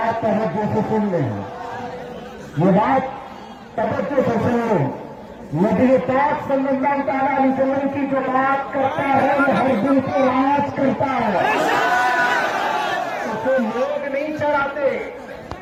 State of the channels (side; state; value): both; identical; correlation 1.00